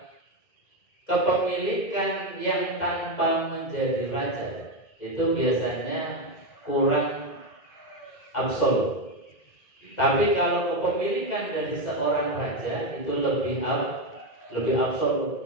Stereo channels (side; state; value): right; late; 2.5 ms